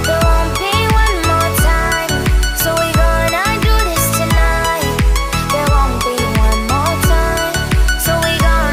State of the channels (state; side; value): identical; both; correlation 1.00